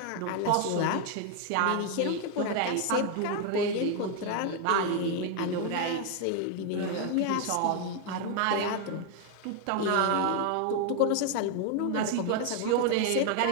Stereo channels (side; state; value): both; different; correlation 0.01